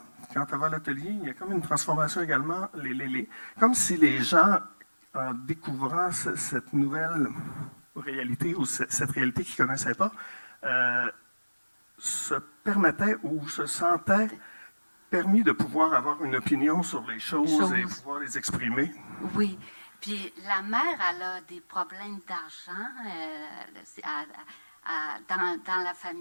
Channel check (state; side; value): inverted; both; correlation -1.00